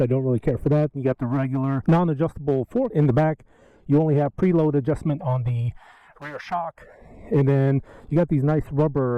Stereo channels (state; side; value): identical; both; correlation 1.00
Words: I don't really care for that. You got the regular non-adjustable fork in the back. You only have preload adjustment on the rear shock, and then you got these nice